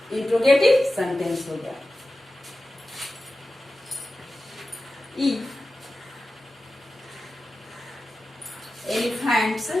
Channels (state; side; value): normal; both; correlation 0.93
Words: इंट्रोगेटिव सेंटेंस हो गया। E. Elephants,